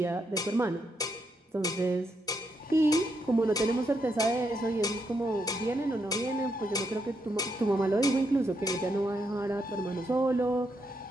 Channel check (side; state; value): both; normal; correlation 0.80